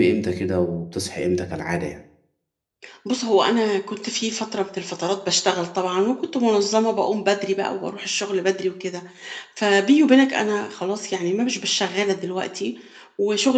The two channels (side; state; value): both; identical; correlation 1.00